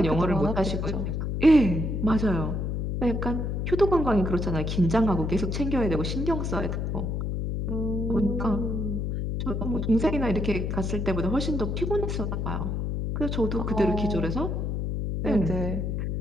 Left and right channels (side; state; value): left; noise; hum, 1 dB below the sound